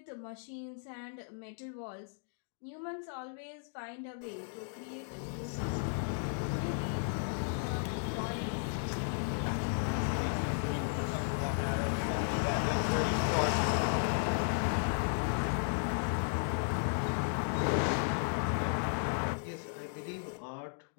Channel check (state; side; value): silent; right; digital silence